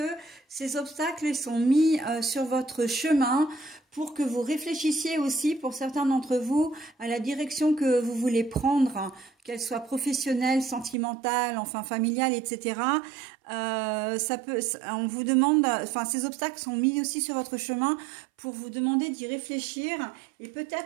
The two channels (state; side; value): drops out; left; at 11.0 s